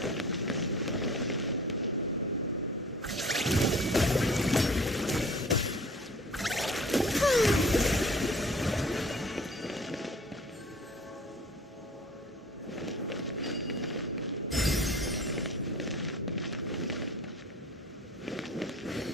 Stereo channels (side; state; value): both; normal; correlation 0.47